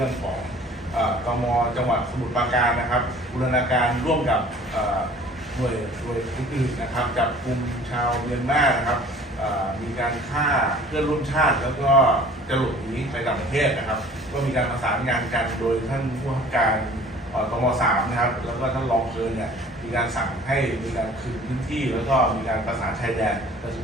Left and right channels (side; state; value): both; normal; correlation 0.49